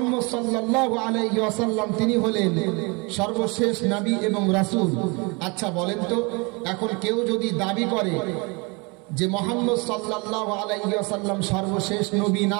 সাল্লাল্লাহু আলাইহি ওয়াসাল্লাম তিনি হলেন সর্বশেষ নবী এবং রাসূল। আচ্ছা বলেন তো, এখন কেউ যদি দাবি করে যে মুহাম্মদ সাল্লাল্লাহু আলাইহি ওয়াসাল্লাম সর্বশেষ নবী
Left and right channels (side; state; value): left; quieter; 29.3 dB